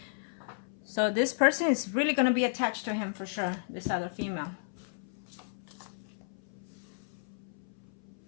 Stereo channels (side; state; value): right; silent; 56 dB below the other